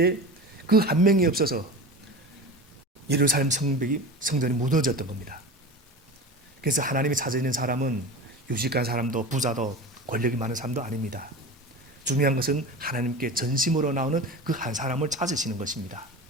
그 한 명이 없어서 예루살렘 성전이 무너졌던 겁니다. 그래서 하나님이 찾아있는 사람은 유식한 사람도 부자도 권력이 많은 사람도 아닙니다. 중요한 것은 하나님께 전심으로 나오는 그 한 사람을 찾으시는 것입니다.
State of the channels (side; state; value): both; normal; correlation 0.31